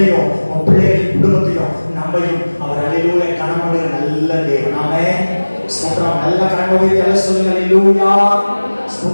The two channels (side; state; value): both; inverted; correlation -1.00